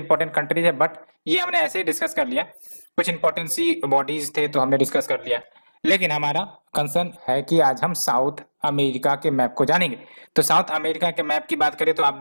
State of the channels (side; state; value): both; inverted; correlation -1.00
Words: कंट्रीज है बट ये हमने ऐसे ही डिस्कस कर लिया, कुछ इंपॉर्टेंट सी बॉडीज थे तो हमने डिस्कस कर लिया। लेकिन हमारा कंसर्न है कि आज हम साउथ अमेरिका के मैप को जानेंगे। तो साउथ अमेरिका के मैप की बात करें तो आप